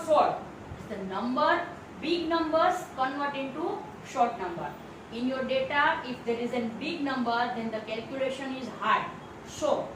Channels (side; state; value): both; identical; correlation 1.00